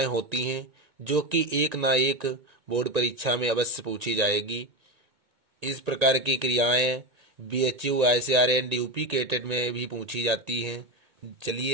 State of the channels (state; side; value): late; left; 1.8 ms